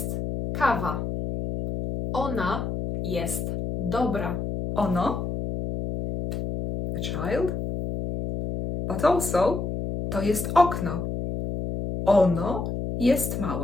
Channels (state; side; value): noise; left; hum, 4 dB below the sound